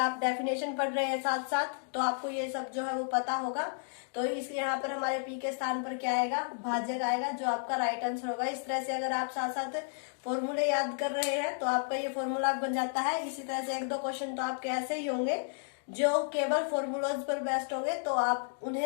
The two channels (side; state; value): right; silent; digital silence